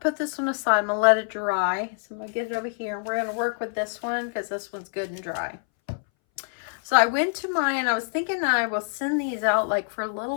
this one aside. I'm going to let it dry. So I'm going to get it over here. We're going to work with this one because this one's good and dry. So I went to mine. I was thinking I will send these out like for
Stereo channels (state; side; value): silent; right; 60 dB below the other